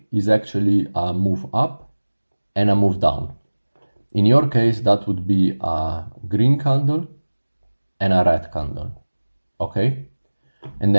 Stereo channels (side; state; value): both; inverted; correlation -1.00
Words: is actually a move up and a move down. In your case, that would be a green candle and a red candle. Okay, and